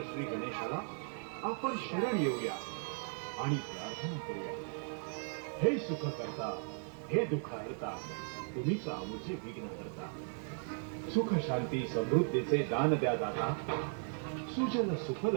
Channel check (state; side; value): silent; left; 53 dB below the other